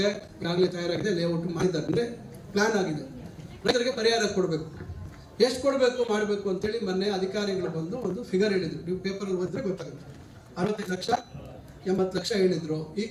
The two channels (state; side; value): identical; both; correlation 1.00